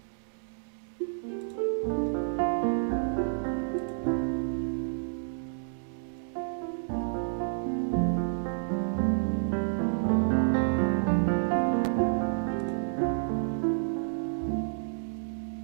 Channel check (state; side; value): silent; left; digital silence